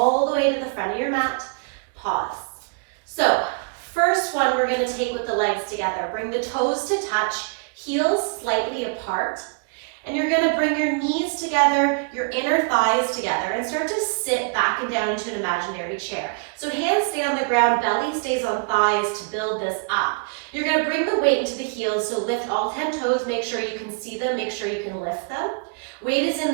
the way to the front of your mat, pause. So, first one we're going to take with the legs together. Bring the toes to touch, heels slightly apart, and you're going to bring your knees together, your inner thighs together, and start to sit back and down into an imaginary chair. So hands stay on the ground, belly stays on thighs to build this up. You're going to bring the weight into the heels, so lift all 10 toes, make sure you can see them, make sure you can lift them. Weight is in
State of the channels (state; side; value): quieter; left; 35.0 dB